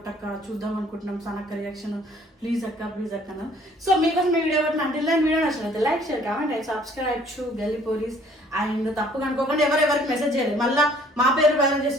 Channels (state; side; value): normal; both; correlation 0.58